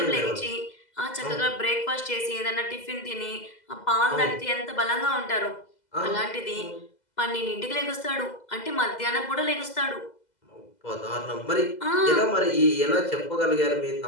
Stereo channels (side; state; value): right; late; 2.0 ms